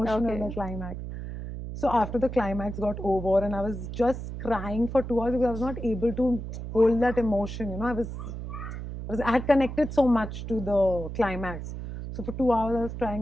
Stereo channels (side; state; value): right; noise; hum, 7 dB below the sound